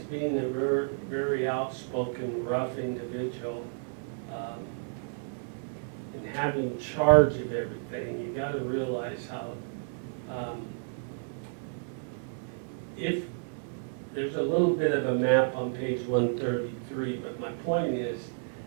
being a very, very outspoken, rough individual, and having charge of everything, you got to realize how if there's a little bit of a map on page 133, but my point is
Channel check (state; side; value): silent; left; digital silence